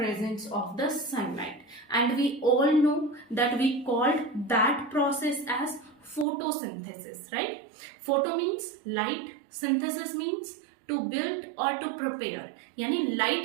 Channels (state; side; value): drops out; left; at 6.2 s